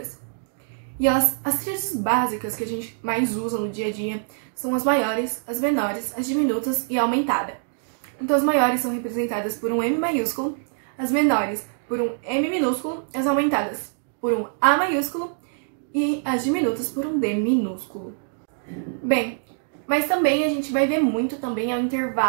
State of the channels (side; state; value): left; silent; digital silence